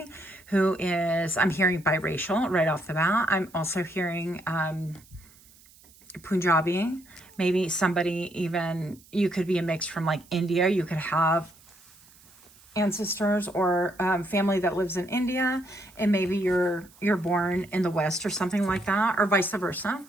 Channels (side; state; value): right; noise; hiss, 26 dB below the sound